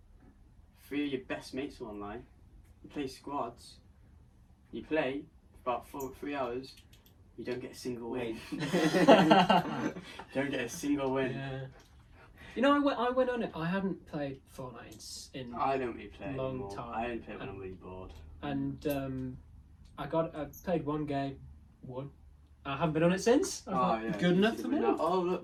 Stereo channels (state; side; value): identical; both; correlation 1.00